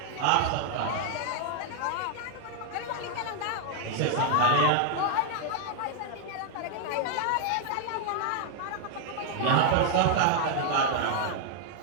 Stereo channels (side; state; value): both; different; correlation 0.00